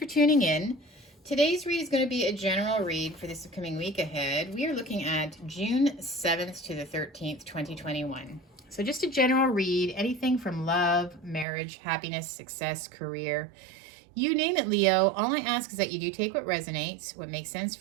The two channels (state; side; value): drops out; left; at 11.5 s